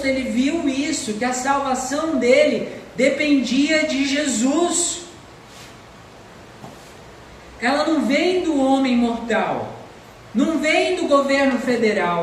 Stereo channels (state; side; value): identical; both; correlation 1.00